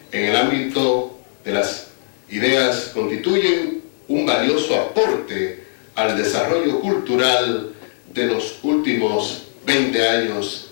en el ámbito de las ideas constituyen un valioso aporte al desarrollo cultural de los últimos 20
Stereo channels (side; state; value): right; silent; digital silence